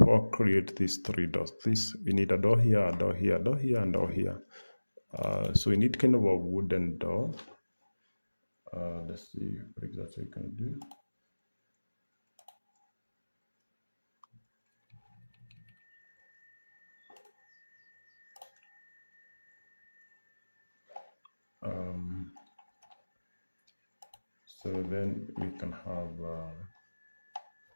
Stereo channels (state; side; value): inverted; both; correlation -1.00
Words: all create these three doors. We need a door here, a door here, a door here, and a door here. So we need kind of a wooden door. Let's see what exactly we can do. So then we can have